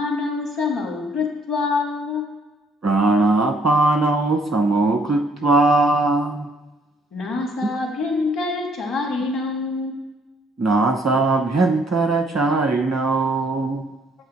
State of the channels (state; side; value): normal; both; correlation 0.64